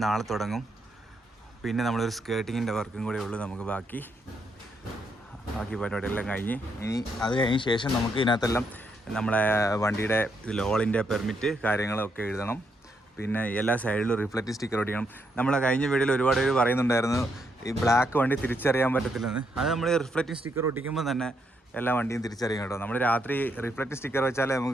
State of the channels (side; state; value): both; normal; correlation 0.78